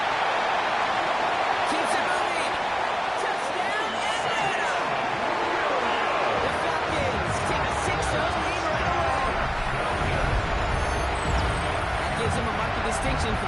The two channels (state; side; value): identical; both; correlation 1.00